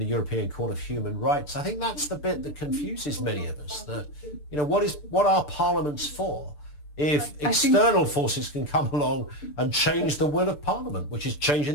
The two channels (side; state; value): right; late; 6.8 ms